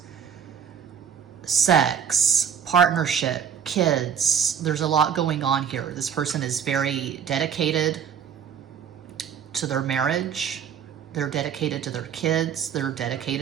sex, partnership, kids. There's a lot going on here. This person is very dedicated to their marriage. They're dedicated to their kids. They're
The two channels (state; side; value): quieter; left; 7.9 dB